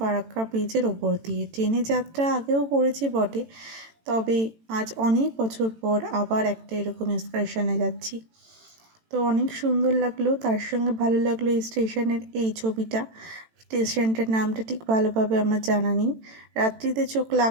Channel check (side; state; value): left; late; 18 ms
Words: ব্রিজের ওপর দিয়ে। ট্রেনে যাত্রা আগেও করেছি বটে, তবে আজ অনেক বছর পর আবার একটা এরকম এক্সকারশনে যাচ্ছি। তো অনেক সুন্দর লাগলো, তার সঙ্গে ভালো লাগলো এই স্টেশনের এই ছবিটা। স্টেশনটার নামটা ঠিক ভালোভাবে আমার জানা নেই। রাত্রিতে চোখ